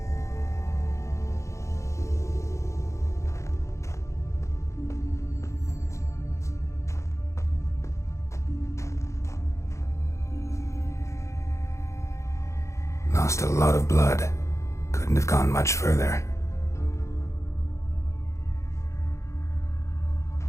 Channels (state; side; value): late; right; 0.14 ms